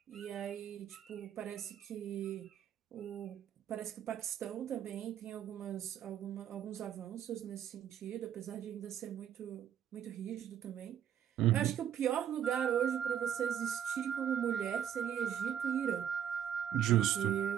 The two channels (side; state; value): left; quieter; 9.6 dB